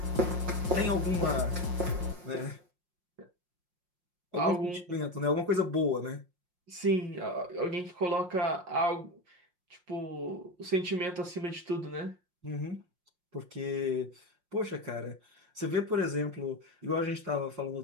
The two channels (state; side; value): late; left; 5.6 ms